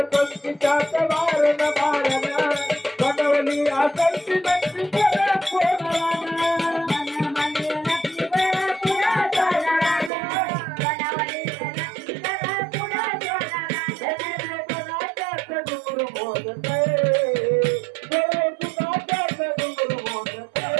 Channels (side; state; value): left; drops out; at 10.1 s